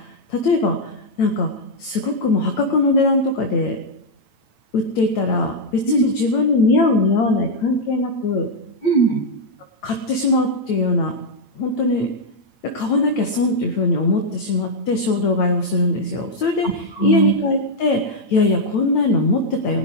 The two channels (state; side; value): late; right; 8.9 ms